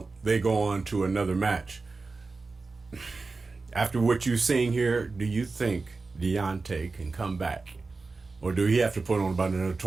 they go on to another match. After what you're seeing here, do you think Deontay can come back? Or do he have to put on about another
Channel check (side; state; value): left; quieter; 3.9 dB